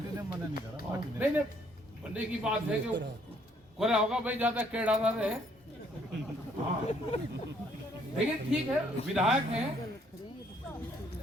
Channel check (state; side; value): normal; both; correlation 0.66